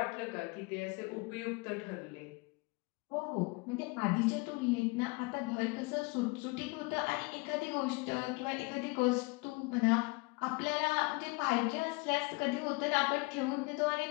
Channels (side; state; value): right; quieter; 27.1 dB